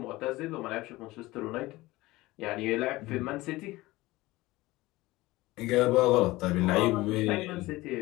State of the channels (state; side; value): quieter; right; 19.4 dB